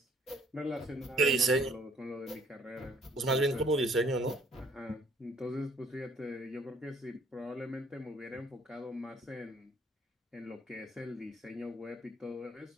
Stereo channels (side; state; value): both; normal; correlation 0.61